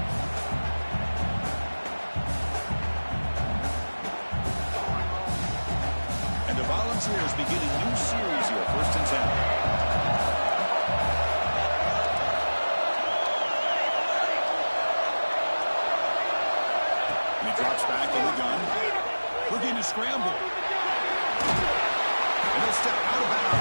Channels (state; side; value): inverted; both; correlation -1.00